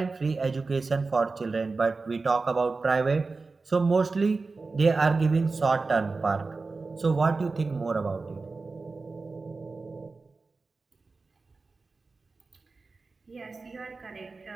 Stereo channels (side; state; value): left; quieter; 3.9 dB